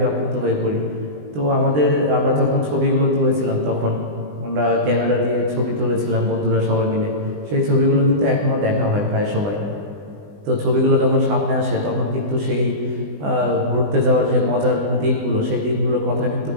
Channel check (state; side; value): late; left; 20 ms